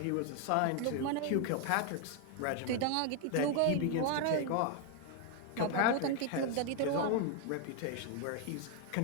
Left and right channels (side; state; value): both; different; correlation 0.00